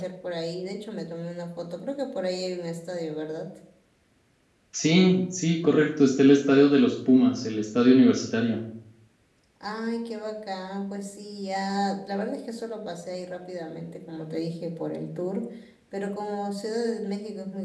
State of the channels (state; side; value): identical; both; correlation 1.00